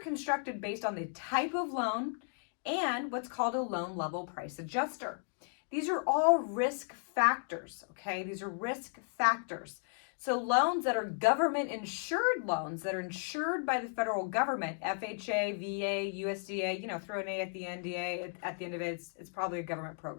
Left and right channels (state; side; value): silent; right; 55 dB below the other